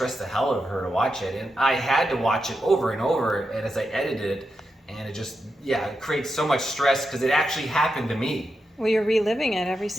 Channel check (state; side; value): normal; both; correlation 0.87